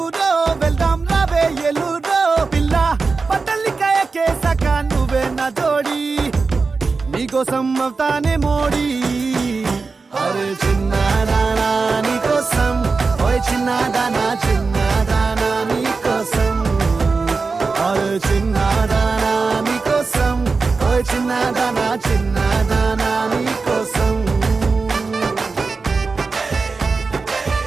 వెళ్దాం రావే ఎల్లూరో, పిల్ల పట్టలికాయ కేసాక నువ్వే నా జోడి, నీకోసం అవుతానే మోడి. అరే చిన్నదానా నీకోసం, ఓయ్ చిన్నదానా చిన్నదానా నీకోసం, అరే చిన్నదానా నీకోసం, ఓయ్ చిన్నదానా చిన్నదానా నీకోసం.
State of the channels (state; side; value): quieter; left; 4.3 dB